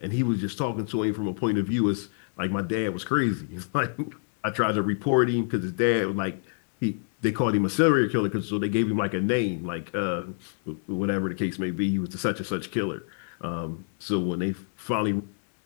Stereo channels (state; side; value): silent; right; digital silence